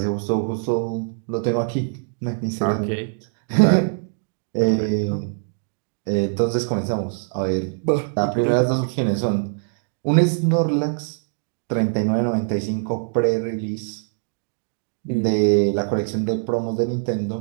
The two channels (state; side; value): silent; left; digital silence